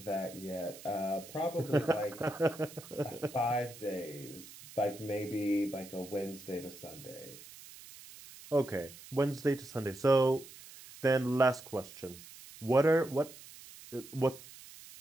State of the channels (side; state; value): right; noise; hiss, 17 dB below the sound